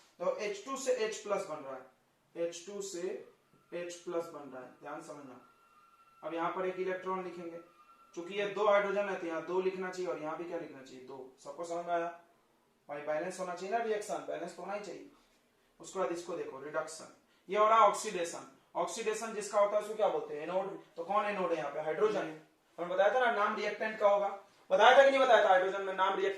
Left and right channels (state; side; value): identical; both; correlation 1.00